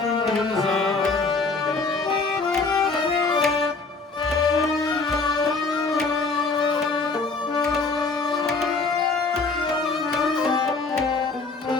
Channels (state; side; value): quieter; right; 4.0 dB